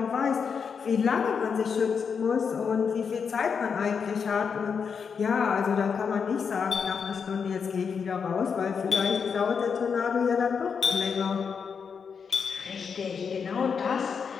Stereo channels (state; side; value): quieter; right; 6.2 dB